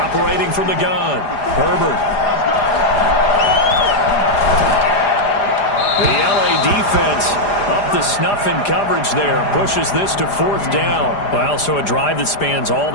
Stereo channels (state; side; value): late; right; 4.9 ms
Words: from the gun, Herbert. The LA defense up the snuff in coverage there. Pushes this to 4th down. Well, so a drive that spans all